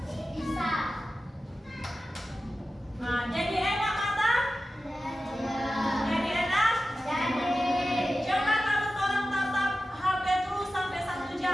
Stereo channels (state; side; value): normal; both; correlation 0.94